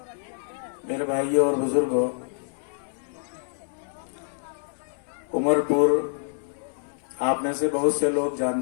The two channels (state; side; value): silent; right; digital silence